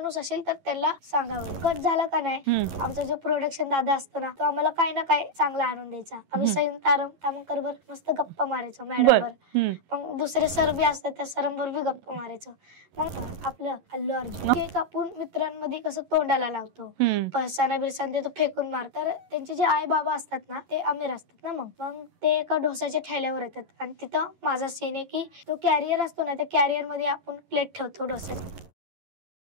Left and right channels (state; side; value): late; left; 11 ms